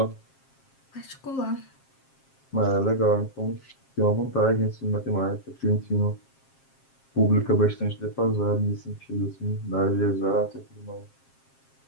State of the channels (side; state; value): right; late; 7.5 ms